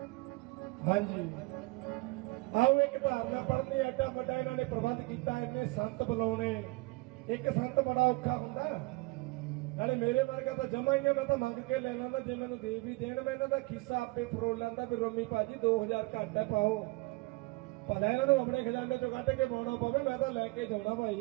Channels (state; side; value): quieter; left; 24.1 dB